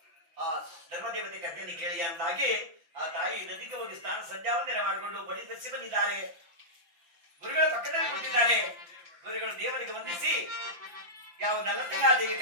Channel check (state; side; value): late; left; 5.9 ms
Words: ಆ ಧರ್ಮದೇವತೆ ಕಥೆಯನ್ನು ಕೇಳಿ ಅಂದಾಗಿ ಆ ತಾಯಿ ನದಿಗೆ ಹೋಗಿ ಸ್ನಾನ ಸಂಧ್ಯಾವಂದನೆ ಮಾಡಿಕೊಂಡು ಮಡಿ ಧರಿಸಿ ಬಂದಿದ್ದಾರೆ. ಗುರುಗಳ ಪಕ್ಕದಲ್ಲಿ ಕೂತಿದ್ದಾರೆ. ಗುರುಗಳು ದೇವರಿಗೆ ವಂದಿಸಿ ಯಾವ ನಲ್ಲತಂಗಾದೇವಿ